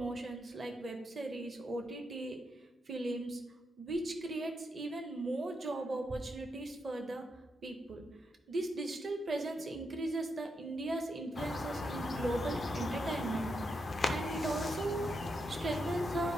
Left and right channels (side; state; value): both; normal; correlation 0.83